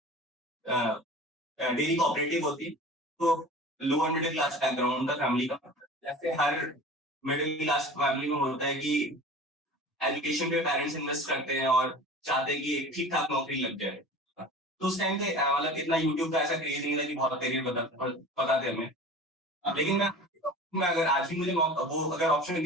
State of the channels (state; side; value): normal; both; correlation 0.38